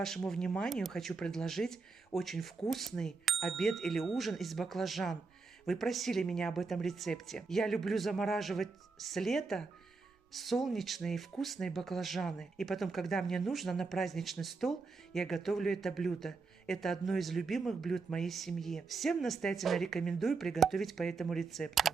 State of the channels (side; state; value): left; quieter; 4.4 dB